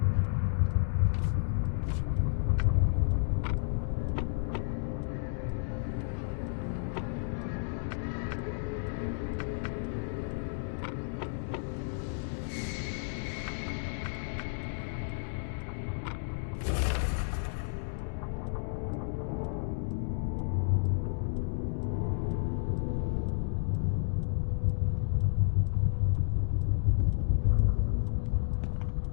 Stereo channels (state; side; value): silent; right; digital silence